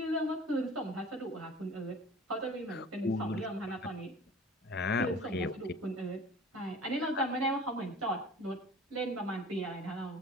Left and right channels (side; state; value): both; normal; correlation 0.43